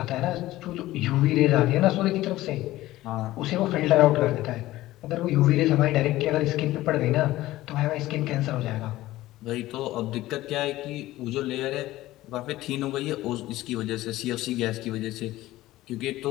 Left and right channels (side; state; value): right; quieter; 16.4 dB